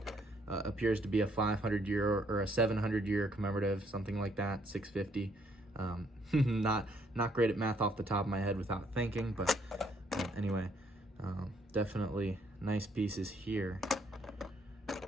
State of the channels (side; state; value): both; normal; correlation 0.69